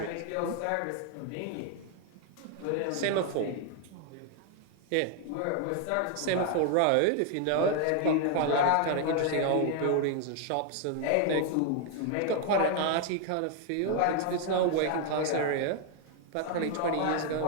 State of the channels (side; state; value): both; different; correlation 0.01